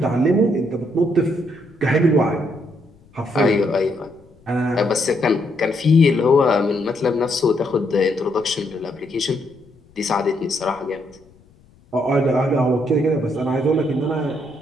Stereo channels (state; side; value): noise; left; rumble, 29 dB below the sound